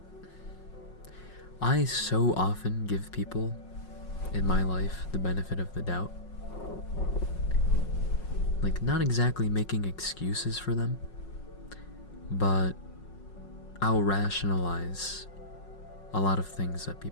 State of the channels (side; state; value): right; late; 5.5 ms